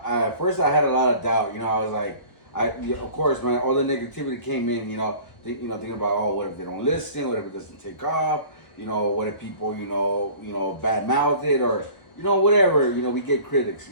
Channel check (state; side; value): late; right; 1.0 ms